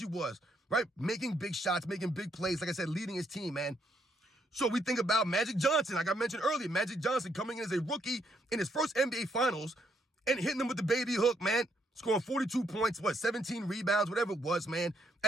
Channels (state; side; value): normal; both; correlation 0.74